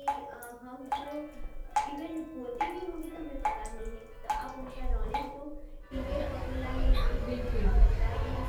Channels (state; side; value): identical; both; correlation 1.00